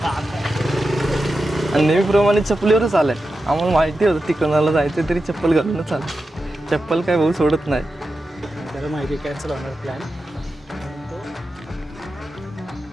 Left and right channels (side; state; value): both; normal; correlation 0.90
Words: आणि नेहमीप्रमाणे चप्पलीवरच आलं आहे. आम्हाला माहिती होतं तिकोनाला जायचं तरी चप्पल घालूनच आलं. चप्पल काय भाऊ सोडत नाही. त्याला माहिती कॅन्सल होणार प्लॅन.